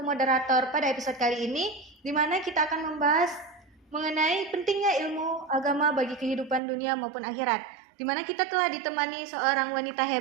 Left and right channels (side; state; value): left; drops out; at 6.6 s